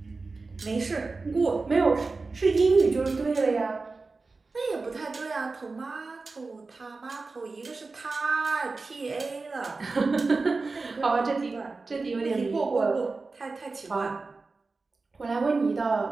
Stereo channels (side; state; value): left; quieter; 3.9 dB